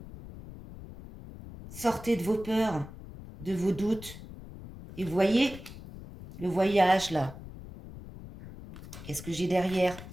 Sortez de vos peurs, de vos doutes. Et vous voyez, le voyage là. Qu'est-ce que j'ai derrière?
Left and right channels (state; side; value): noise; left; rumble, 14 dB below the sound